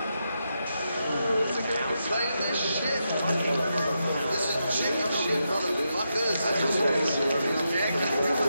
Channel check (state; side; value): inverted; both; correlation -0.85